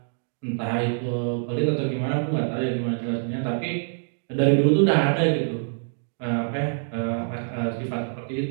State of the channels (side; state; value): left; silent; digital silence